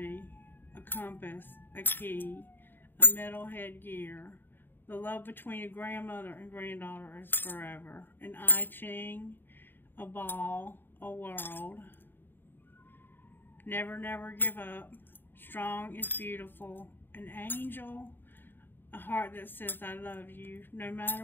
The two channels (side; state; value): right; late; 0.095 ms